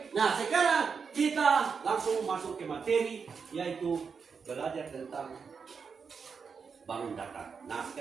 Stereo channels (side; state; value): left; quieter; 5.8 dB